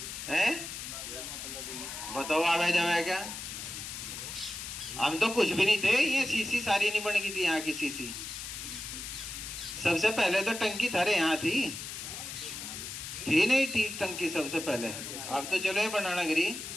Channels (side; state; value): left; noise; hiss, 8 dB below the sound